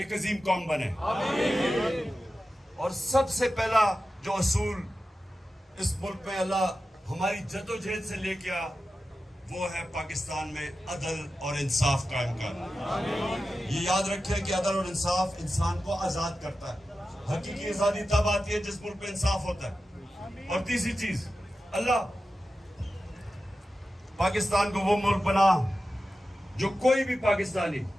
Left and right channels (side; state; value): both; normal; correlation 0.93